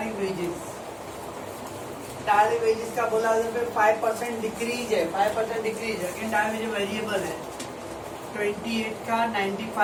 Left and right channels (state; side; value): identical; both; correlation 1.00